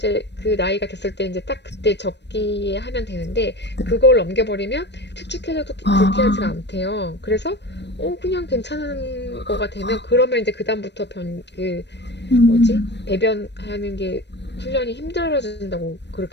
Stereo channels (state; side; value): late; right; 0.50 ms